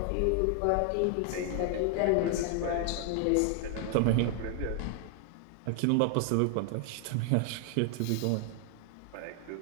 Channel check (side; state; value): both; different; correlation 0.00